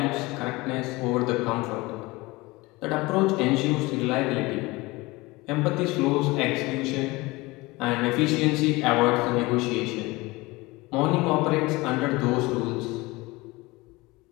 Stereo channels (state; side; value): quieter; right; 22.3 dB